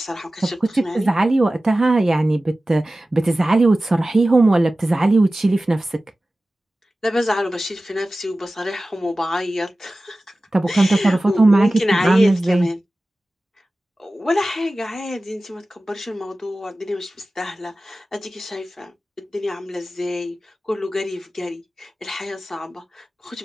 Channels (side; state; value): both; normal; correlation 0.96